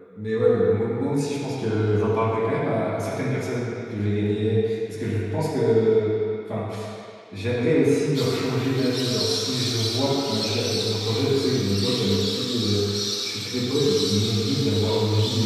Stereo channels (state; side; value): identical; both; correlation 1.00